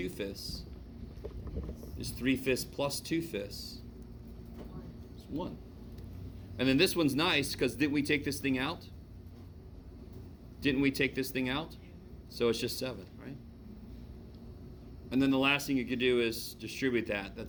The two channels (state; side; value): identical; both; correlation 1.00